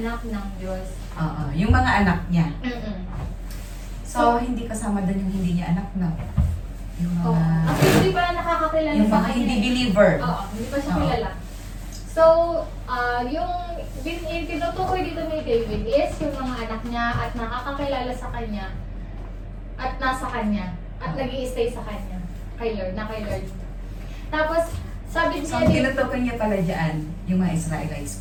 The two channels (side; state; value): both; identical; correlation 1.00